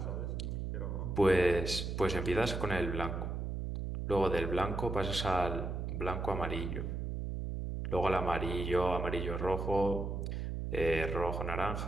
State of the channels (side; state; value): right; noise; hum, 3 dB below the sound